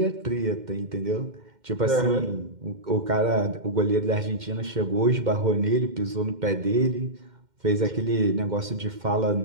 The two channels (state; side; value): late; left; 2.1 ms